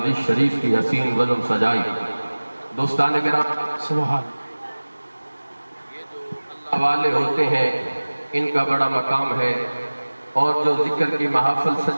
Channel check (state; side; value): inverted; both; correlation -1.00